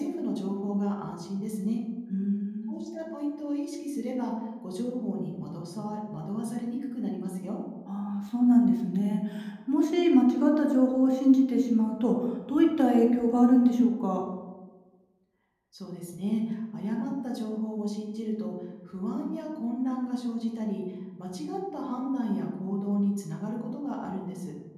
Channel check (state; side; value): identical; both; correlation 1.00